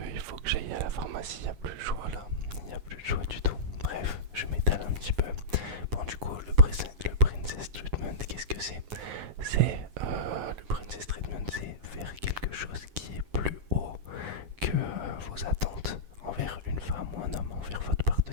j'aille à la pharmacie, il n'y a plus de choix là, il n'y a plus de choix du tout. Bref, je m'étale un petit peu. Bon, du coup, le Princess Treatment, qu'est-ce que c'est? Le Princess Treatment, c'est faire quelque chose qui est plus haut que vos attentes envers une femme ou un homme, envers votre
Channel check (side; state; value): left; late; 9.6 ms